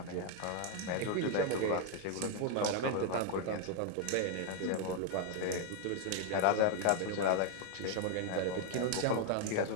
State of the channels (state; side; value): different; both; correlation 0.00